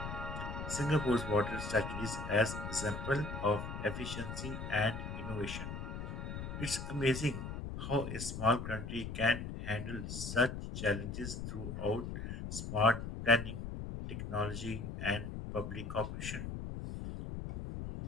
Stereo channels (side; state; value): left; noise; rumble, 6 dB below the sound